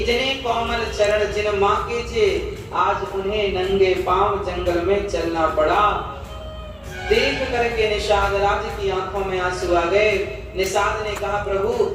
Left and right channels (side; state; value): both; identical; correlation 1.00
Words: कोमल चरण जिन माँ के थे, आज उन्हें नंगे पांव जंगल में चलना पड़ा। देख करके निषाद राज की आंखों में आंसू आ गए। निषाद ने कहा, प्रभु,